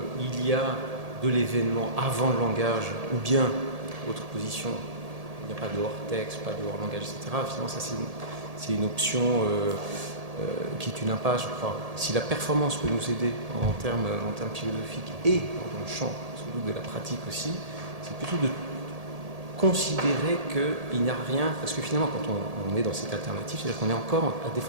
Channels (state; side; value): late; left; 1.8 ms